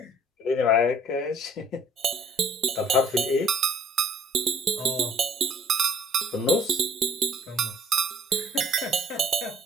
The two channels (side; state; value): both; normal; correlation 0.58